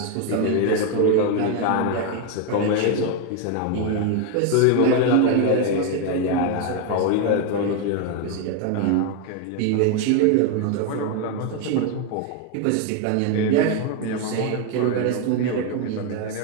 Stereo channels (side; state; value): both; different; correlation 0.01